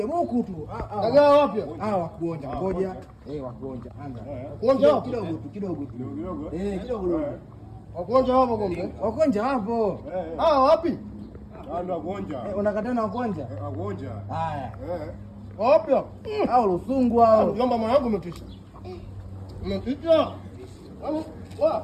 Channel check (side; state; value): both; identical; correlation 1.00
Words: buku tu. Dagaa wapi? Wakuonja. Ngoja. Wakuonja. Anga. Kuonja kidogo. Kidogo. Wakuonja hapo kombe. Wakuonja hapo. Wapi? Ndio wakuonja. Unakataa na wakuonja? Wakuonja. Haya. Wapi? Hao Lusungu hao. Mjomba mwanangu umetisha. Umetisha.